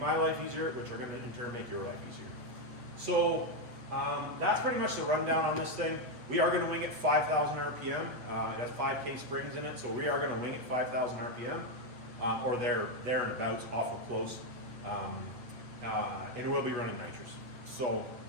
life easier, which are going to in turn make your life easier. So that's pretty much the rundown on this thing. We are going to wing it 5,000 RPM. It has 5K springs in it, so we are going to wing it 5,000 RPM, or there and abouts, awful close. And we'll be running nitrous. So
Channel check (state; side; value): late; left; 8.4 ms